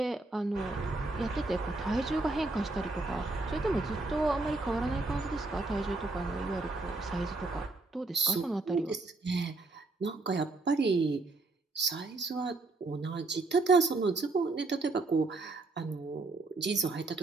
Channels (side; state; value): left; quieter; 3.3 dB